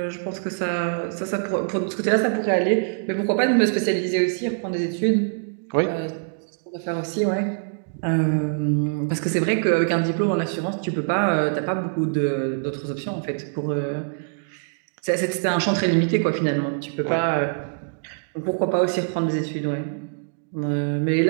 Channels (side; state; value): left; silent; digital silence